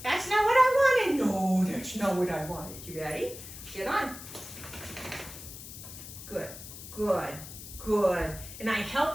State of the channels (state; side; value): noise; left; hiss, 13 dB below the sound